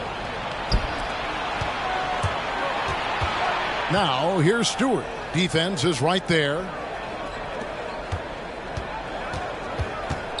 Now, here's Stewart. Defense is right there.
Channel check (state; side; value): identical; both; correlation 1.00